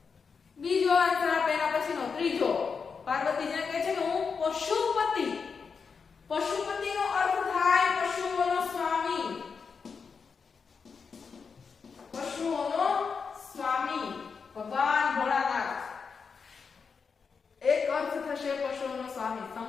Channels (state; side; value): quieter; right; 5.6 dB